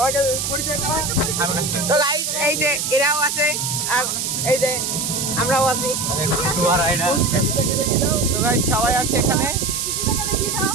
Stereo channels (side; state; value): right; noise; hiss, 1 dB below the sound